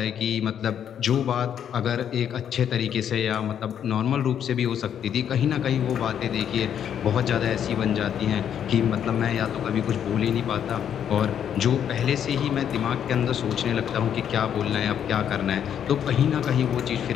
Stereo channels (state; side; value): quieter; right; 9.1 dB